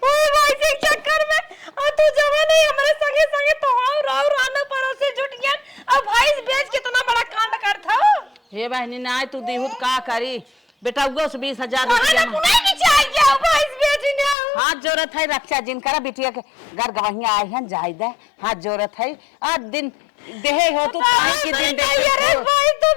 ओए भाई के चक्कर में, और तू जवा नहीं हमारे संगे संगे तो राव रानो पड़ोसी जुट गया और भैंस बेच कितना बड़ा कांड करता हो। हे बहनी ना तू देहुत का करी बेटा, उगो से 20,000 कहां ना पुनाई की चाहिए हो भैंस बेचने हो? हाथ जोरत है रक्षा जिनकरा बिटिया के घर गवहिया आए हैं जाय दे, हाथ जोरत है। आज दिन देहे हो तू काहे के दिन दे? अरे भाई तो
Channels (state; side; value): drops out; right; at 14.4 s